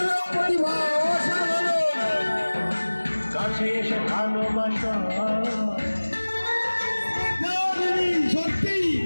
কাছে এসে ভালোবাসা। সত্যি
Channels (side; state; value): both; inverted; correlation -1.00